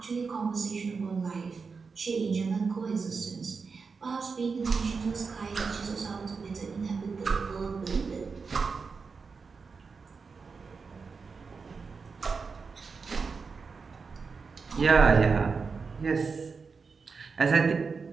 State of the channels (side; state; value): left; quieter; 5.0 dB